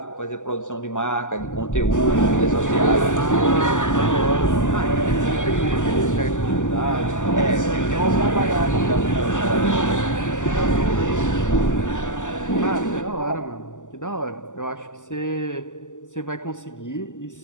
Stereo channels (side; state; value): right; late; 0.86 ms